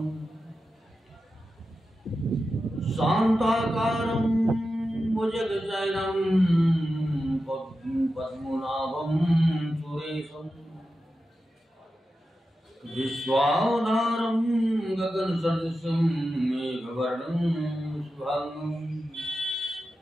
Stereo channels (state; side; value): normal; both; correlation 0.91